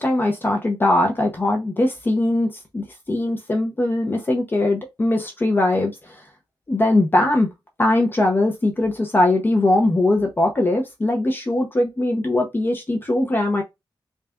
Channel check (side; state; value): both; normal; correlation 0.88